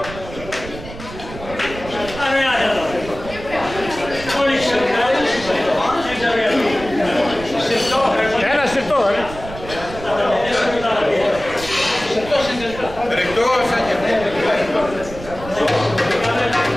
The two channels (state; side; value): noise; right; rumble, 13 dB below the sound